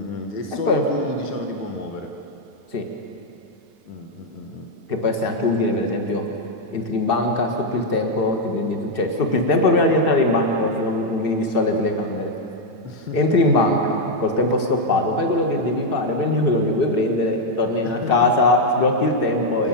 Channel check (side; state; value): left; late; 9.1 ms